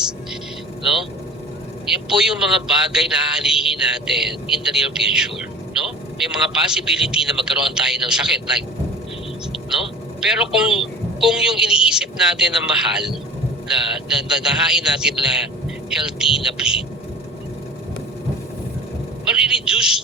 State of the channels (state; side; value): normal; both; correlation 0.38